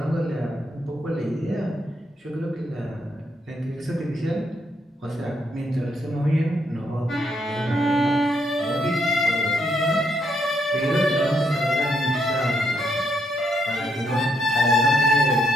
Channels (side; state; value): both; normal; correlation 0.75